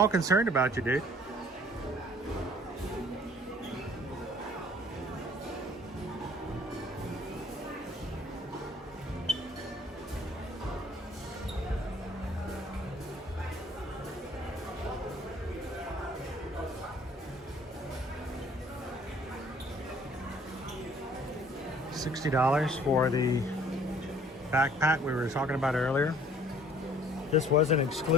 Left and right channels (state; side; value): normal; both; correlation 0.56